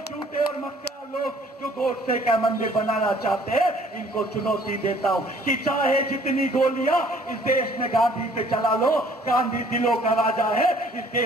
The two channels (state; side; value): normal; both; correlation 0.57